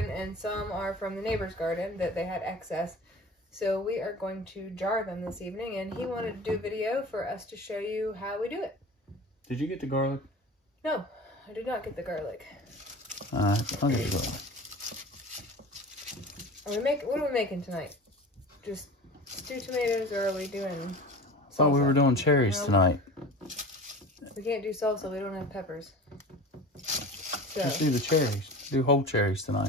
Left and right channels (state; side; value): normal; both; correlation 0.36